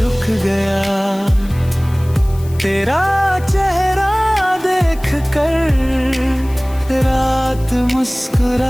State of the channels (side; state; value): left; noise; hiss, 22 dB below the sound